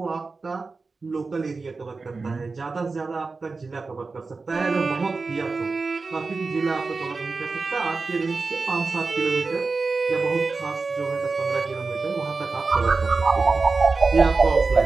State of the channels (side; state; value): left; quieter; 4.1 dB